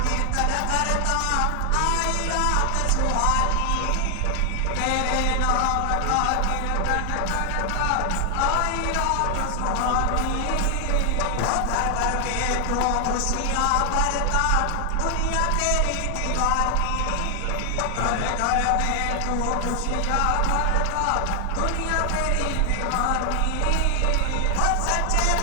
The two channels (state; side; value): different; both; correlation 0.00